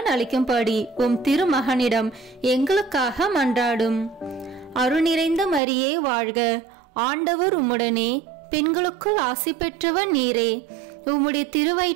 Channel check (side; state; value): left; drops out; at 5.6 s